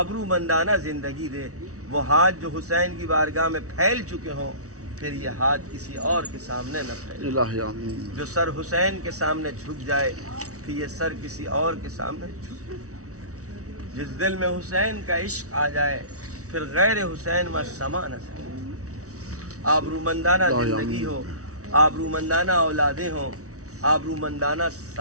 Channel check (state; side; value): late; left; 0.65 ms